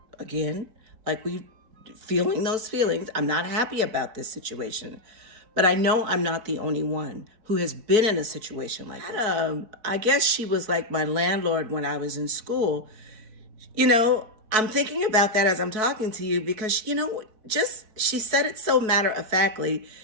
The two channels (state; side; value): late; left; 4.6 ms